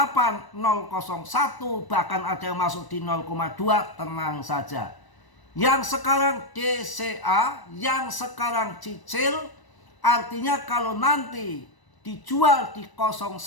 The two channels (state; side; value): late; right; 1.0 ms